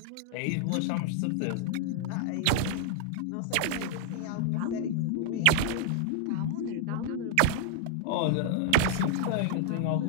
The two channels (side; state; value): both; different; correlation 0.00